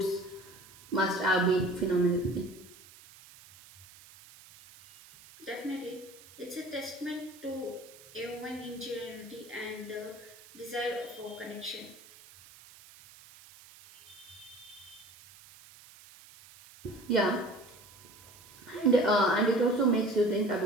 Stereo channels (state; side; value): noise; right; hiss, 21 dB below the sound